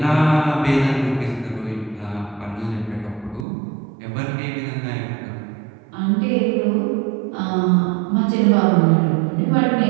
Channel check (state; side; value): drops out; left; at 3.5 s